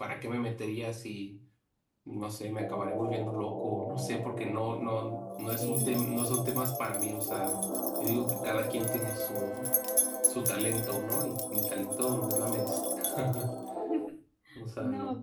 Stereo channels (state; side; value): identical; both; correlation 1.00